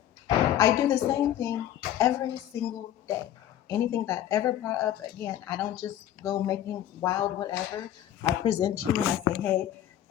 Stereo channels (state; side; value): quieter; right; 11.6 dB